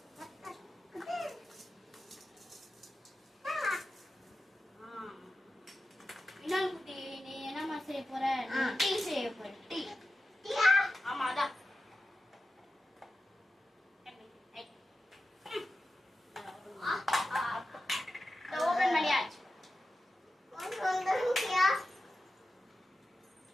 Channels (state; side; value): normal; both; correlation 0.93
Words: டீ செய்ய போற. டீ ஆமா அதான். ஓபன் பண்ணியாச்சு.